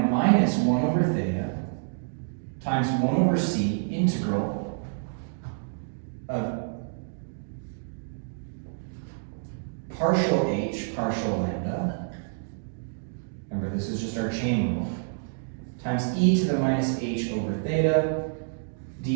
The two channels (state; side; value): silent; left; digital silence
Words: minus 1 over theta times 1 over c integral of partial h, partial lambda. Remember, this is just our chain rule. Times e to the minus h over theta,